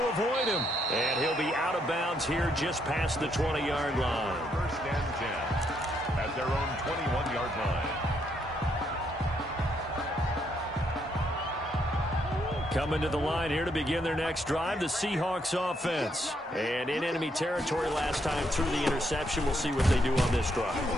avoid him. And he'll be out of bounds here just past the 20-yard line. 1st and 10 at their own 21-yard line. Coming to the line here to begin their next drive, the Seahawks offense. And in enemy territory last time through the interception. We'll see what they do on this drive.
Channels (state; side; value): normal; both; correlation 0.74